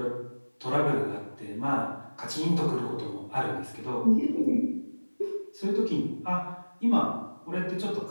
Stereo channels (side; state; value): both; inverted; correlation -1.00